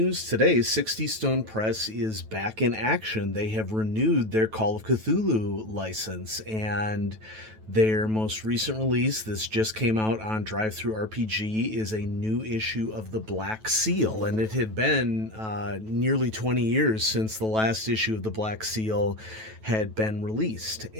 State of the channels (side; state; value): left; late; 9.2 ms